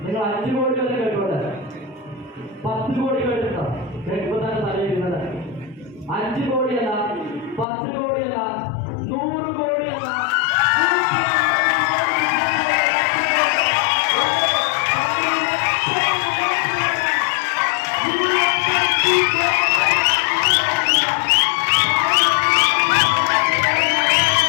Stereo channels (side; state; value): right; drops out; at 7.7 s